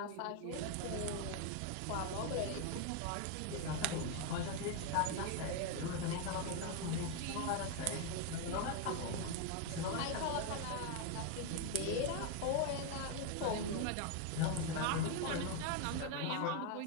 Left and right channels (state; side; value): different; both; correlation 0.01